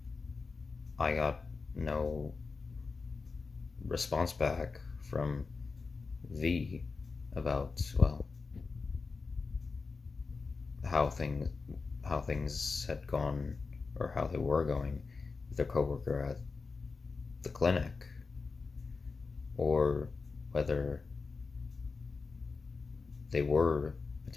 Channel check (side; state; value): right; quieter; 4.4 dB